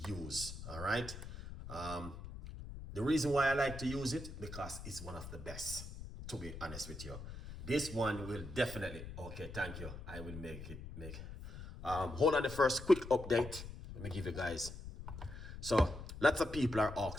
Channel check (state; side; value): noise; left; rumble, 10 dB below the sound